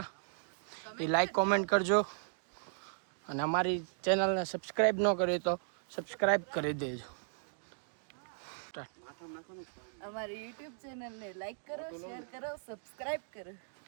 એ લાઈક કોમેન્ટ કરજો, અને અમારી ચેનલને સબસ્ક્રાઈબ ન કરી તો સબસ્ક્રાઈબ કરી દેજો. અમારી યુટ્યુબ ચેનલને લાઈક કરો, શેર કરો, સબસ્ક્રાઇબ કરો.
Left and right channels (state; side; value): silent; left; digital silence